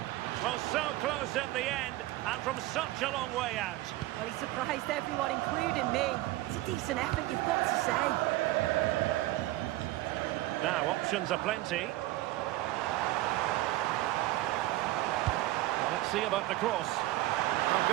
Well, so close in the end, and from such a long way out. Well, he surprised everyone, including me. It's a decent effort, you've got to say. Now, options are plenty. Well, let's see about the cross. Oh,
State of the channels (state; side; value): quieter; left; 17.3 dB